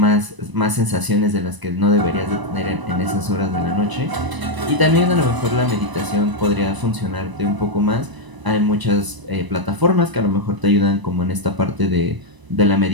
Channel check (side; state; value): left; late; 1.0 ms